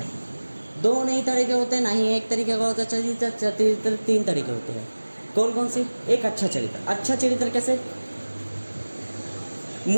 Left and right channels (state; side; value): inverted; both; correlation -1.00